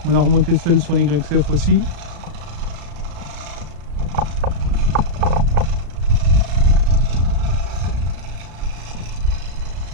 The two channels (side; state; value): left; late; 35 ms